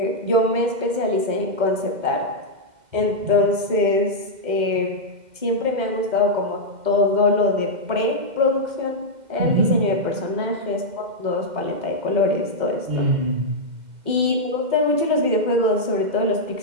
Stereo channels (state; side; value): late; left; 2.0 ms